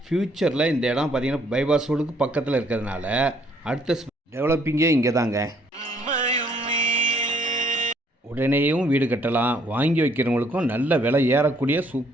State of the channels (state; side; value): normal; both; correlation 0.65